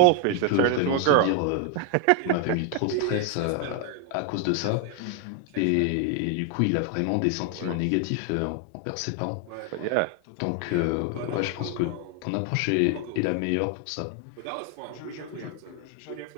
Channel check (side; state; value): both; different; correlation 0.01